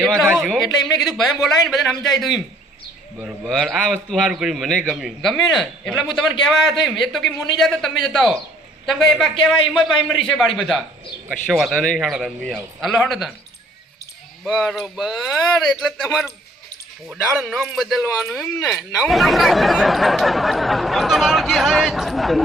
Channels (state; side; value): normal; both; correlation 0.61